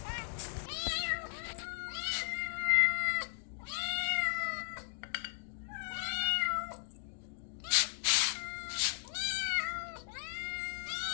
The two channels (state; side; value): silent; right; digital silence